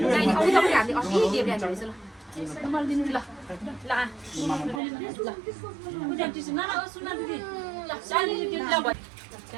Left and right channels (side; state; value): left; drops out; at 4.8 s